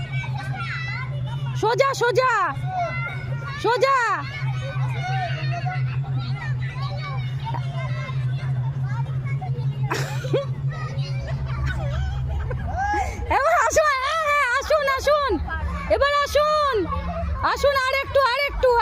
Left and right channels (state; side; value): identical; both; correlation 1.00